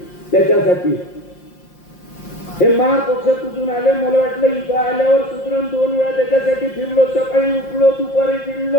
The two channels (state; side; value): late; right; 5.7 ms